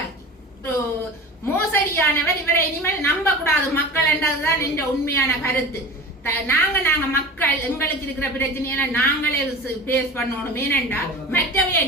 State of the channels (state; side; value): normal; both; correlation 0.35